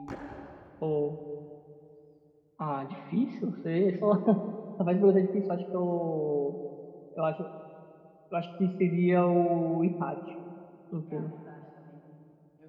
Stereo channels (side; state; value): both; identical; correlation 1.00